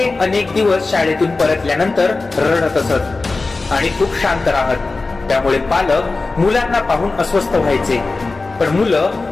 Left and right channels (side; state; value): right; quieter; 3.6 dB